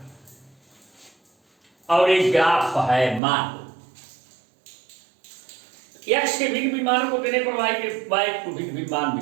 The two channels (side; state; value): left; drops out; at 3.2 s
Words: और एक ग्राफ है। मान लो x के भिन्न भिन्न मानों को देने पर y को भिन्न भिन्न मान